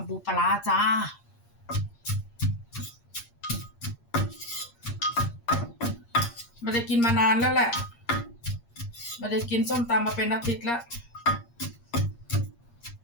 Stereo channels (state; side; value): late; right; 8.6 ms